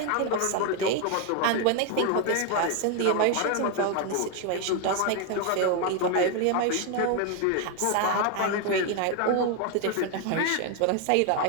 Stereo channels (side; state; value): both; different; correlation 0.01